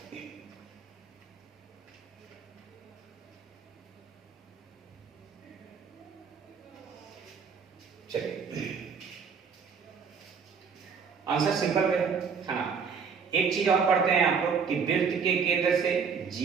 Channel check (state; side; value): quieter; left; 6.0 dB